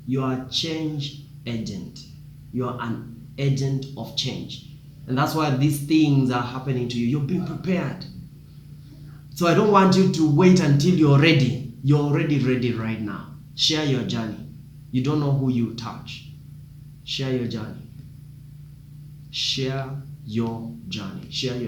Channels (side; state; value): both; identical; correlation 1.00